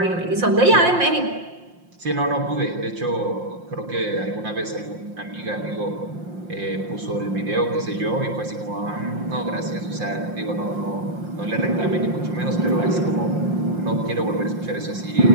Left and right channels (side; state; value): left; late; 5.7 ms